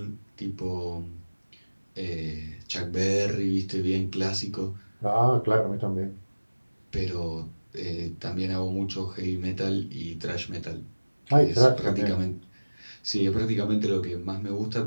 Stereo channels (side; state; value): both; inverted; correlation -1.00